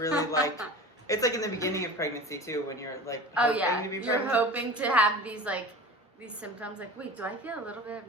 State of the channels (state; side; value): normal; both; correlation 0.36